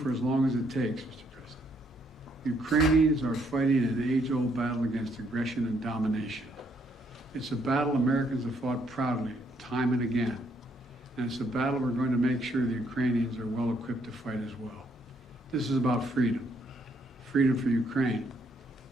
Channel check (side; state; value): both; normal; correlation 0.71